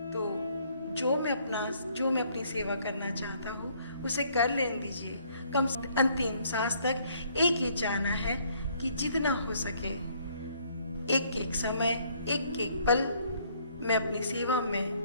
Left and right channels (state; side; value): inverted; both; correlation -0.65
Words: तो जो मैं अपनी सेवा करना चाहता हूँ उसे कर लेने दीजिए। कम से अंतिम सांस तक एक ही चाहना है कि जितना हो सके एक एक समय, एक एक पल मैं अपनी सेवा